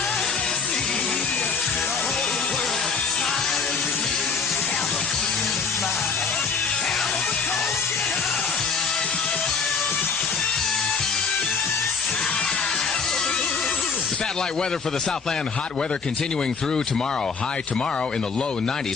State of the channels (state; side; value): quieter; right; 5.4 dB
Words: Satellite weather for the Southland. Hot weather continuing through tomorrow. High tomorrow in the low